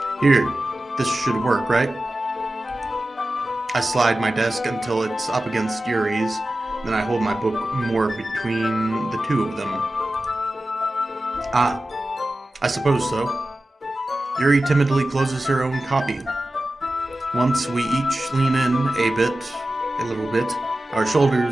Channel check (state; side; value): normal; both; correlation 0.94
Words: Here, this should work, right? I slide my desk until it's up against Yuri's, then I hold my book more between the two of them. I suppose so. Yuri timidly closes her own copy. Once we each lean in a little bit, our